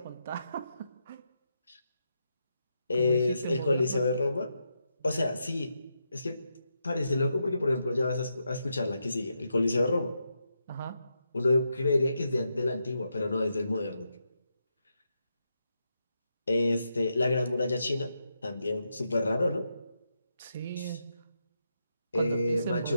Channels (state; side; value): inverted; both; correlation -0.84